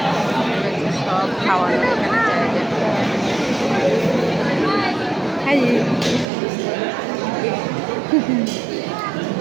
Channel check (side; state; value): left; drops out; at 6.2 s